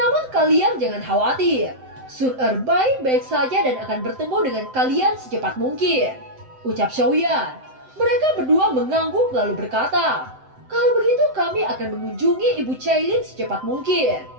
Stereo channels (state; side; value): late; left; 7.8 ms